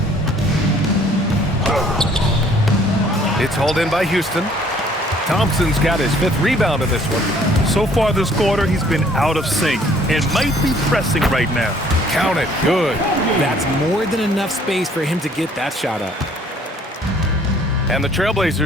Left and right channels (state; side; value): normal; both; correlation 0.59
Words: It's hauled in by Houston. Thompson's got his 5th rebound in this one. So far this quarter, he's been out of sync and might be pressing right now. Count it. Good. That's more than enough space for him to get that shot up. And the